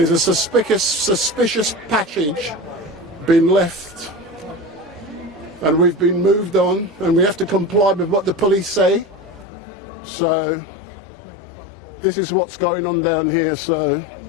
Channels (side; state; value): right; drops out; at 9.5 s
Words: a suspicious passage been left, and we've been moved on, and we have to comply with what the police say. So this is what's going on down here. So